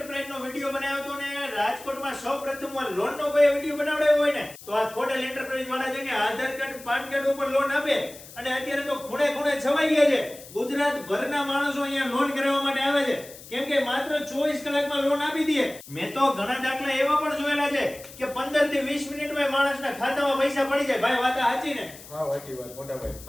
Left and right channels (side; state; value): left; noise; hiss, 17 dB below the sound